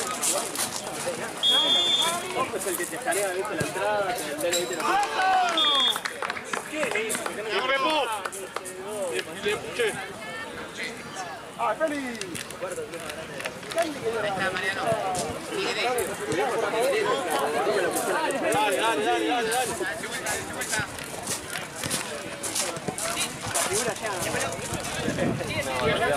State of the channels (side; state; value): both; identical; correlation 1.00